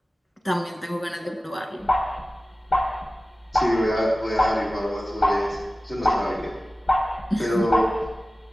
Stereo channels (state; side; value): normal; both; correlation 0.96